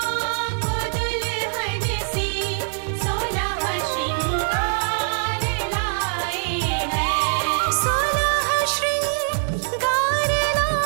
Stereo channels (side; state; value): left; silent; digital silence